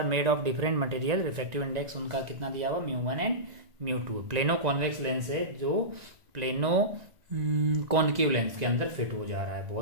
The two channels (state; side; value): late; left; 1.9 ms